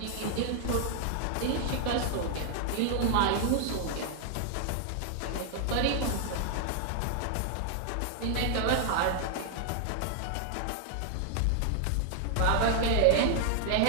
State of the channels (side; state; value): both; different; correlation 0.00